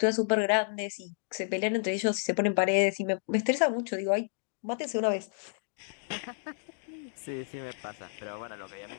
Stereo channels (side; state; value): right; silent; digital silence